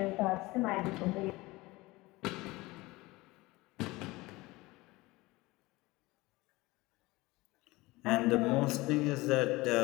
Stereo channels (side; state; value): right; quieter; 21.1 dB